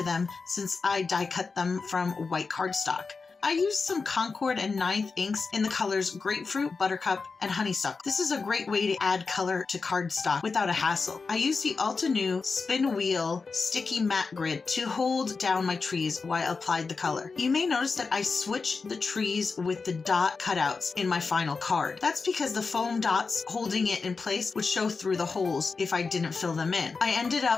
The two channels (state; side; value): quieter; right; 4.5 dB